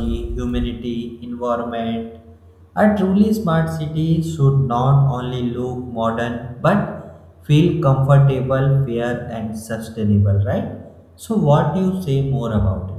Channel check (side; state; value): both; identical; correlation 1.00